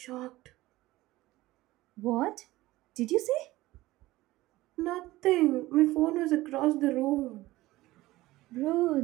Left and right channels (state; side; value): quieter; left; 17.9 dB